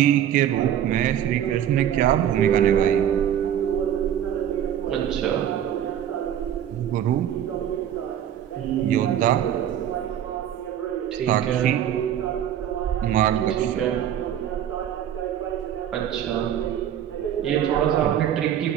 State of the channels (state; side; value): quieter; left; 10.3 dB